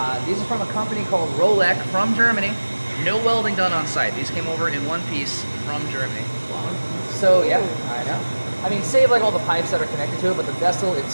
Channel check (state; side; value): inverted; both; correlation -1.00